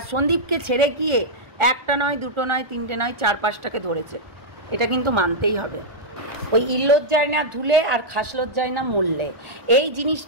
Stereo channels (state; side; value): late; left; 1.4 ms